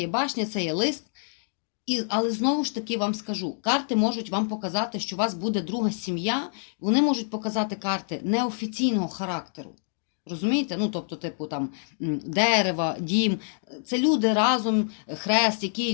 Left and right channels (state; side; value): silent; right; digital silence